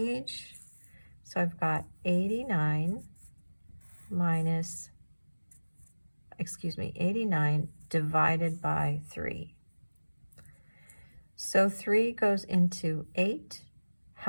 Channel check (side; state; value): both; inverted; correlation -1.00